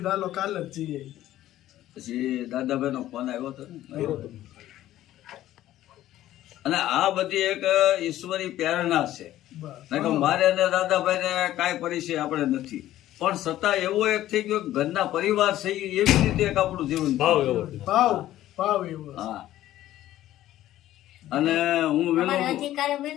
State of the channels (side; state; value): right; quieter; 13.8 dB